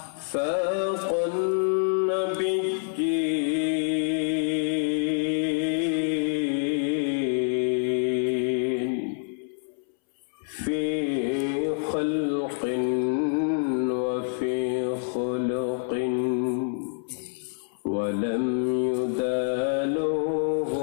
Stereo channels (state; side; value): silent; right; 60 dB below the other